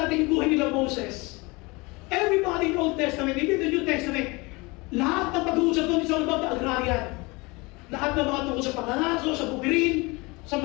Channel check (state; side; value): quieter; right; 25.3 dB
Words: yung Old Testament, hindi the New Testament. Lahat ng pag-uusap doon is all about the agrarian. Lahat ng mga tungkol sa pangangaso, sa bukirin, sa